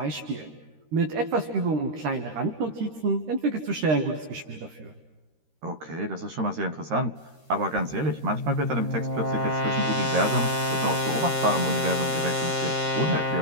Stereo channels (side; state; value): left; late; 13 ms